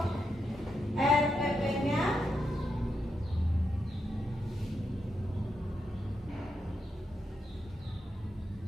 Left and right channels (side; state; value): both; normal; correlation 0.84